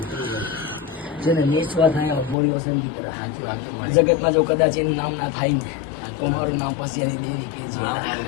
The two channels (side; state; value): right; drops out; at 2.4 s